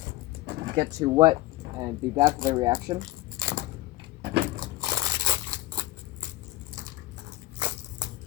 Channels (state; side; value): quieter; right; 17.5 dB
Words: get too wet and be bad for the reaction.